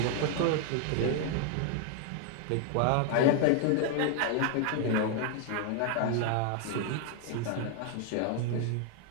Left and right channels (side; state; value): both; different; correlation 0.00